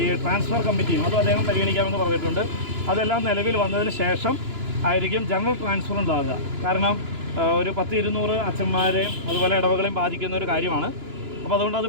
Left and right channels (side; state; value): left; late; 2.9 ms